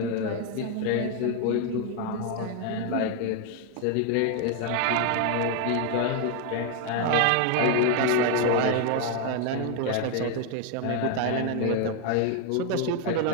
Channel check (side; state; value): both; different; correlation 0.01